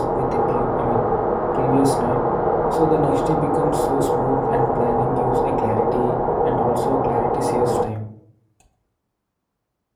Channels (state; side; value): identical; both; correlation 1.00